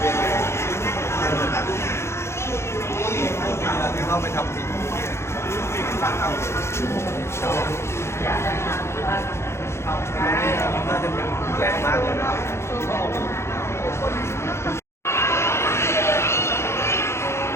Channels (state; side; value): late; right; 0.13 ms